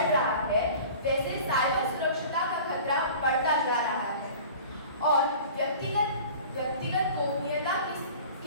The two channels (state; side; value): inverted; both; correlation -0.42